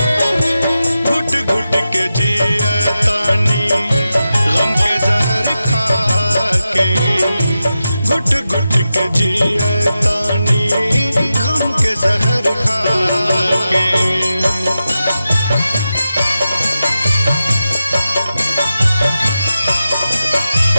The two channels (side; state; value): both; inverted; correlation -0.91